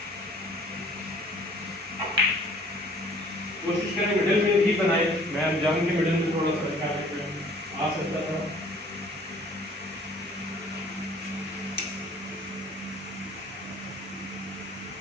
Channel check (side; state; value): both; normal; correlation 0.54